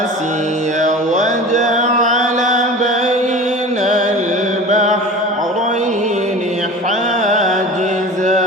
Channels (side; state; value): both; normal; correlation 0.37